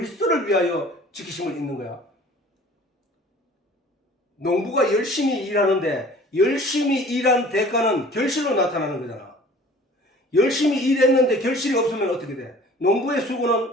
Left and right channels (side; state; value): both; normal; correlation 0.47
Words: 위하여 지키심을 입는 거야? 농부가 열심히 일하는데 열심히 일한 대가는 결실로 나타나는 거잖아. 열심히 일했는데 결실이 없으면 어떻게 돼? 농부의